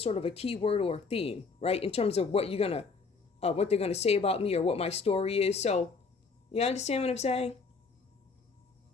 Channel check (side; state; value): right; quieter; 4.6 dB